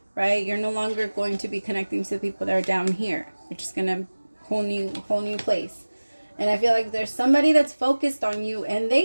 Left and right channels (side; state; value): both; inverted; correlation -1.00